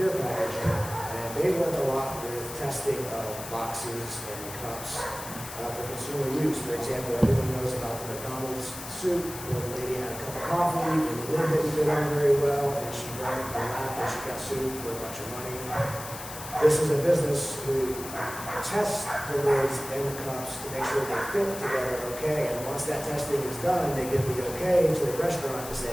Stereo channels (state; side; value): noise; left; hiss, 11 dB below the sound